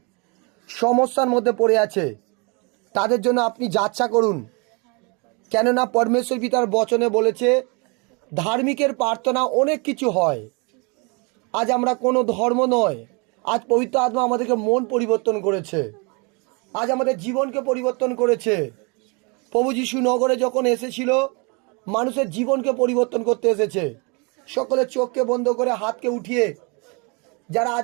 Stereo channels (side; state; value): left; quieter; 31.7 dB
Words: সমস্যার মধ্যে পড়ে আছে, তাদের জন্য আপনি যাচ্ছা করুন। কেননা পরমেশ্বর পিতার বচনে বলেছে ধার্মিকের প্রার্থনা অনেক কিছু হয়। আজ আমরা কোনো ধর্ম নয়, আজ পবিত্র আত্মা আমাদেরকে মন পরিবর্তন করেছে, আজ আমাদের জীবনকে পরিবর্তন করেছে। প্রভু যিশু নগরে যখন এসেছিল মানুষের জীবনকে পরিবর্তন করতে এসেছে। সকলে চোখকে বন্ধ করে হাতকে উঠিয়ে, যারা